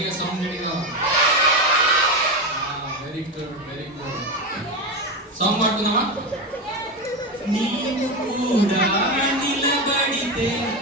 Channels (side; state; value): both; normal; correlation 0.16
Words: సౌండ్ గట్టిగా. Very good. సాంగ్ పాడుతున్నావా? నీవు కూడా నిలబడితే